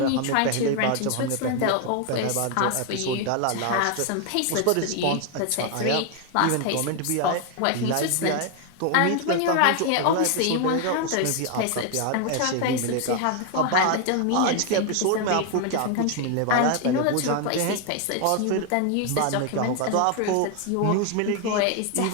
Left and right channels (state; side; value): different; both; correlation 0.01